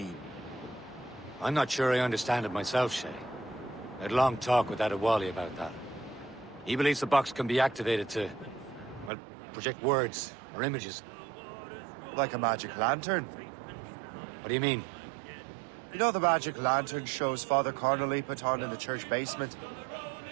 I'm not sure I understand it myself, Shay. I had a long talk with Adewale about that. He believes the box can be activated to, well, project words or images. Like a magic lantern? What do you mean? You know the magic lantern shows Father Connolly put on in the church basement?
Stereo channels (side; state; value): left; drops out; at 9.1 s